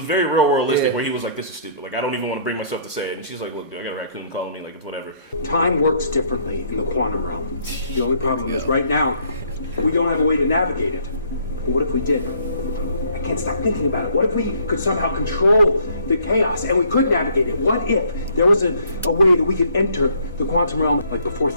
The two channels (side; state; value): both; inverted; correlation -0.62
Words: very real worldistic Yeah. where he was like, "This is stupid. Like I don't even want to bring myself to say it." And she's like, "Look, dude, I got a raccoon calling me. Like it's whatever." Time works differently in the quantum realm. The only problem is right now, we don't have a way to navigate it. But what if we did? I can't stop thinking about it. What if we could somehow control the chaos and we could navigate it? What if there was a way that we could enter the quantum realm like before